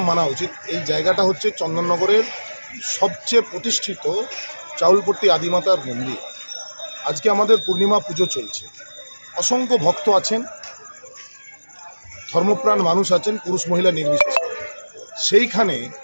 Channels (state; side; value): inverted; both; correlation -1.00